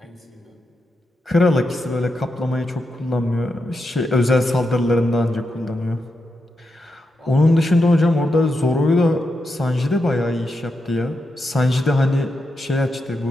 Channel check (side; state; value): both; normal; correlation 0.86